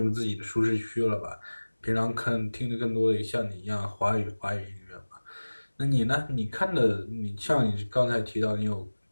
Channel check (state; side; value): inverted; both; correlation -1.00